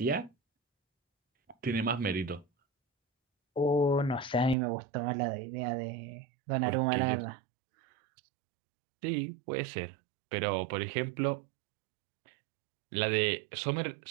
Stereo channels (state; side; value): drops out; left; at 4.5 s